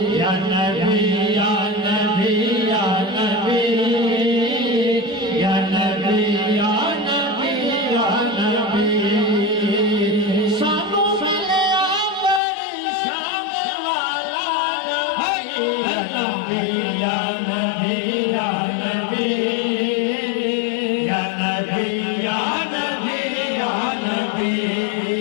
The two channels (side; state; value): right; drops out; at 12.4 s